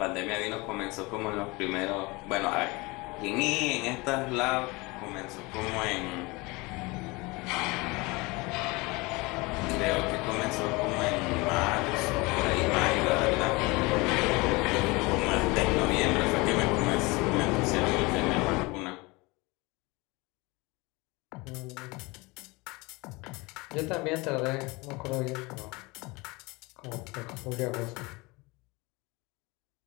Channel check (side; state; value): right; quieter; 24.7 dB